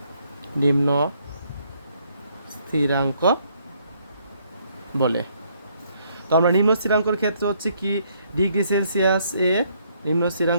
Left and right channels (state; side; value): inverted; both; correlation -0.69